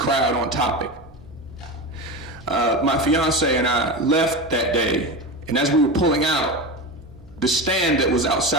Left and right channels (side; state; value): right; noise; hum, 28 dB below the sound